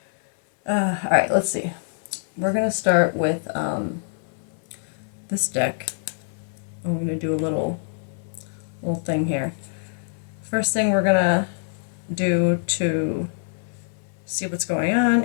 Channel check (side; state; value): right; silent; 60 dB below the other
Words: Alright, let's see. We're going to start with this deck. I'm going to do a little thing here. First thing we're going to do to see what's going on